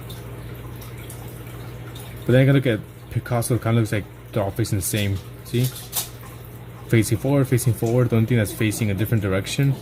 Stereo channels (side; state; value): both; identical; correlation 1.00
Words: But then I gotta look at Picasso kind of looks like they're all facing the same. See? Facing forward, facing forward. The only thing that's facing a different direction